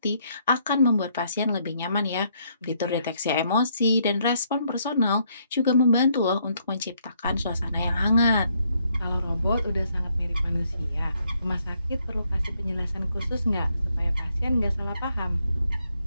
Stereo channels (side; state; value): both; inverted; correlation -0.72